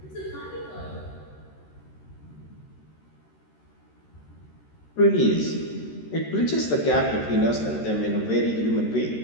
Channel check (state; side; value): late; right; 13 ms